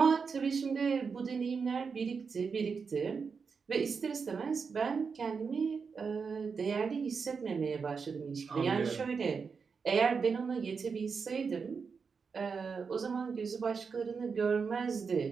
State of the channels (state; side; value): quieter; left; 5.5 dB